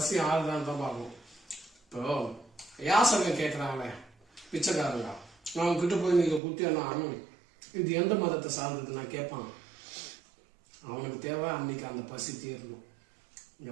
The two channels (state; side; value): drops out; left; at 6.4 s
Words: ஆறுதான் தான் பார்க்கணும். இப்போ யாசகம் கேட்கறாங்களே பிச்சைக்காரங்க, அவங்க கிட்ட போய் நீங்க குத்தியானா இது எந்த மதத்தை சார்ந்தது நான் கேட்பான். அவனுக்கு தேவை அன்னைக்கு அந்த பசி தீரணும். இந்த